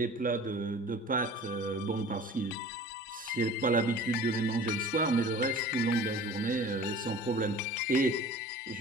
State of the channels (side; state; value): both; normal; correlation 0.43